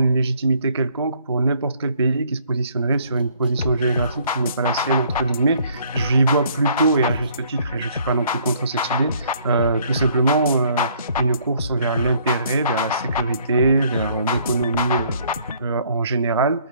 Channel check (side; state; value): both; inverted; correlation -0.63